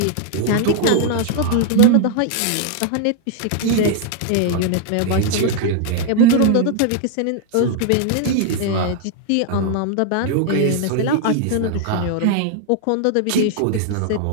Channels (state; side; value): different; both; correlation 0.00